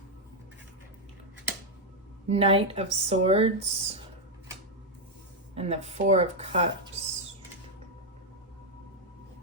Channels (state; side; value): normal; both; correlation 0.00